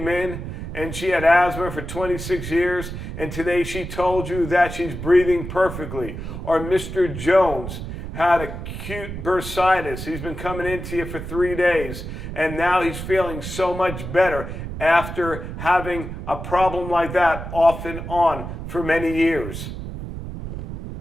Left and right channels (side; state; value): right; noise; rumble, 8 dB below the sound